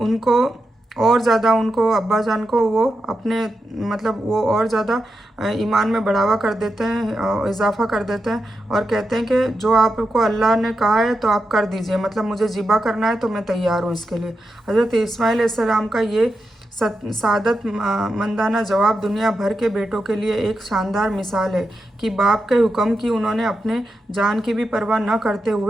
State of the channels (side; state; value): both; normal; correlation 0.87